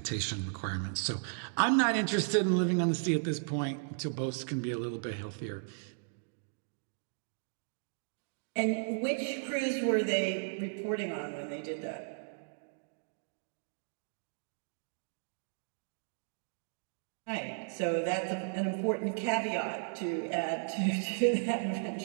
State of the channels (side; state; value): left; silent; digital silence